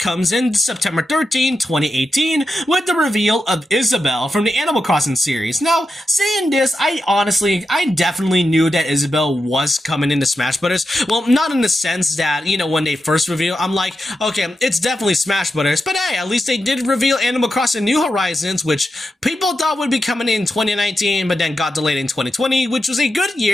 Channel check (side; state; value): both; normal; correlation 0.88